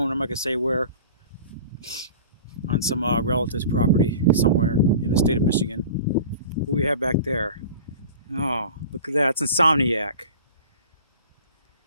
I'm not gonna say where. On some relative's property somewhere in the state of Michigan. Who we have back there? Oh, look at that! It's Insomniac.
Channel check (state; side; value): inverted; both; correlation -0.40